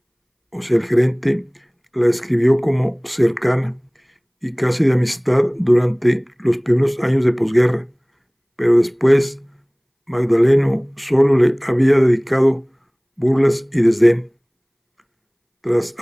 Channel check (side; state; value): both; identical; correlation 1.00